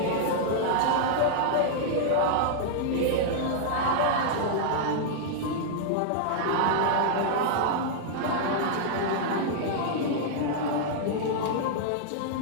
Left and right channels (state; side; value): different; both; correlation -0.01